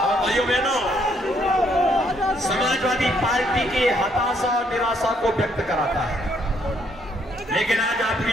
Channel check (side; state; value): both; normal; correlation 0.70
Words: भाइयों बहनों, समाजवादी पार्टी की हताशा और निराशा को व्यक्त कराता है, लेकिन आज आपकी